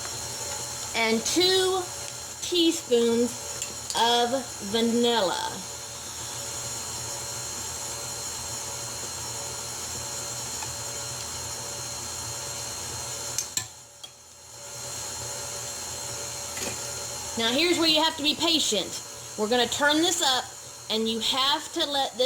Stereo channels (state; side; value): identical; both; correlation 1.00